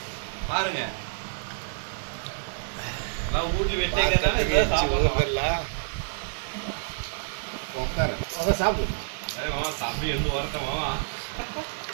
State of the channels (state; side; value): silent; left; digital silence